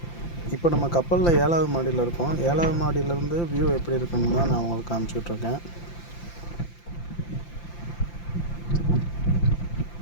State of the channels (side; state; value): right; late; 5.8 ms